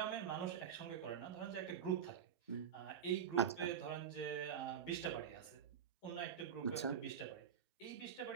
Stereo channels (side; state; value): left; quieter; 8.0 dB